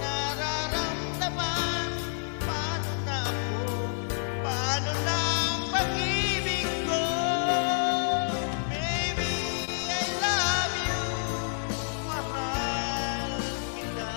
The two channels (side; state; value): right; silent; digital silence